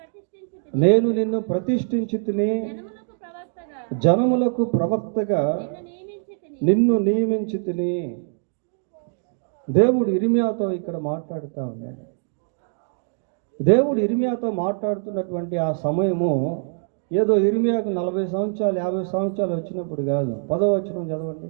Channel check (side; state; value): left; silent; digital silence